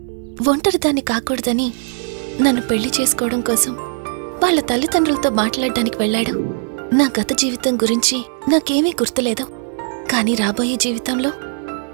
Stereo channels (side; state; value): left; silent; digital silence